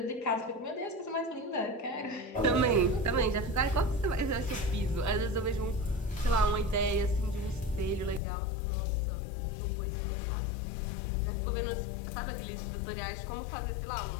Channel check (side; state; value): right; drops out; at 8.2 s